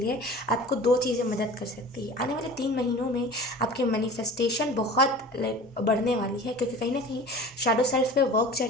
आपको दो चीज़ें मदद कर सकती है। आने वाले 3 महीनों में आपकी मैनिफेस्टेशन बहुत लाइक बढ़ने वाली है, क्योंकि कहीं ना कहीं शैडो सेल्फ पे वर्क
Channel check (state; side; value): normal; both; correlation 0.40